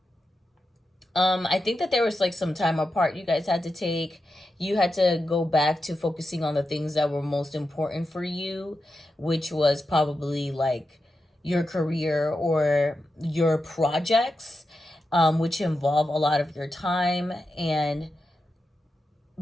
I think that there was like some time apart you guys had to take. You had to go back to focusing on the things that were most important for you, which was probably like your career or your projects, which involve a lot of your time. And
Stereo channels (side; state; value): both; normal; correlation 0.89